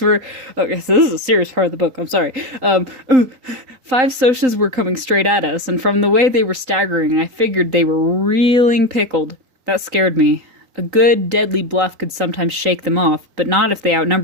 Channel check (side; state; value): left; late; 3.8 ms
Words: were... Okay, so this is a serious part of the book. I'm sorry. 5 socias were coming straight at us, and from the way they were staggering, I figured they were reeling pickled. That scared me. A good, deadly bluff could sometimes shake them off, but not if they